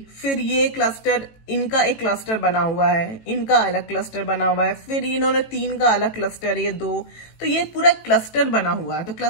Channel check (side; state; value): right; late; 18 ms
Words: फिर ये क्लस्टर, इनका एक क्लस्टर बना हुआ है, इनका अलग क्लस्टर बना हुआ है, फिर इन्होंने 3 का अलग क्लस्टर, ये 2, तो ये पूरा क्लस्टर बना हुआ है। तो